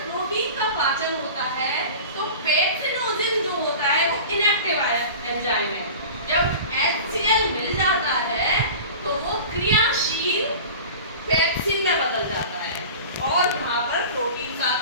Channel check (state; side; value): inverted; both; correlation -0.36